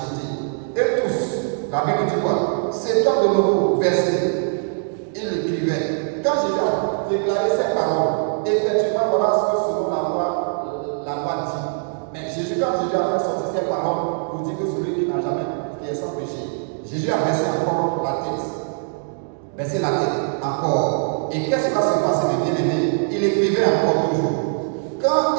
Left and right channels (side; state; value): left; silent; digital silence